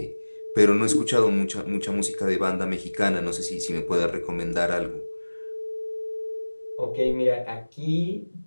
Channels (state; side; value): inverted; both; correlation -1.00